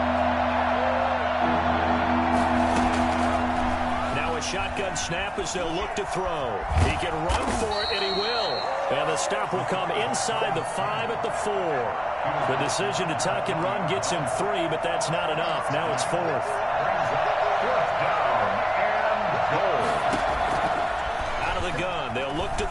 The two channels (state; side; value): identical; both; correlation 1.00